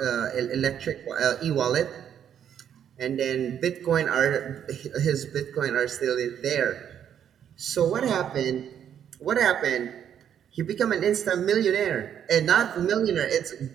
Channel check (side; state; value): left; quieter; 9.2 dB